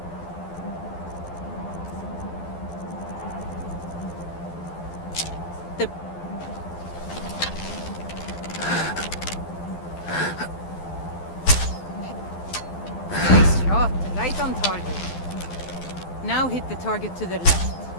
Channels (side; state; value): right; late; 12 ms